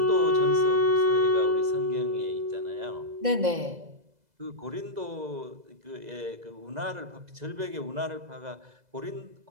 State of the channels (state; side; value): late; left; 2.0 ms